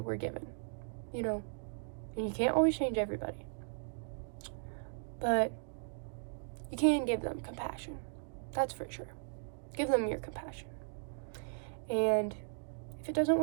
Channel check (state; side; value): silent; left; digital silence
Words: given, you know, and you can't always change everybody, but you can give them compassion. That's for sure. Give them your compassion. And if it doesn't